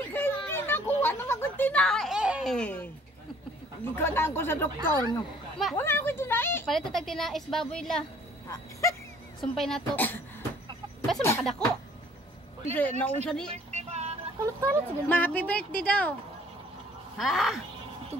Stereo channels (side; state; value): both; normal; correlation 0.57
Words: kay hindi nakuha na magtinae. Ikaw na ako sa doktor. No? Wala ako tinae. Palito tag tinais baboy la. Sumpay na to. Basta makadako. Kasi naunsa ni. Kulot-kulot siguro. Ma, happy birthday daw. Ha?